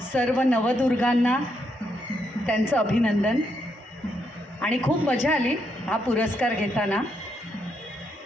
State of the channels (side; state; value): both; normal; correlation 0.78